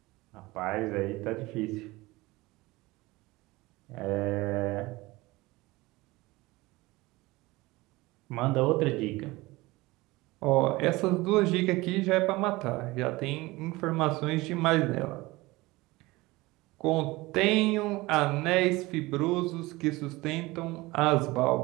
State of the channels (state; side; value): quieter; left; 21.0 dB